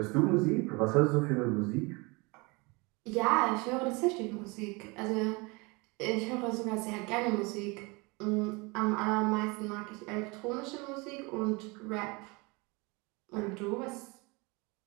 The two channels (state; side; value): quieter; left; 27.1 dB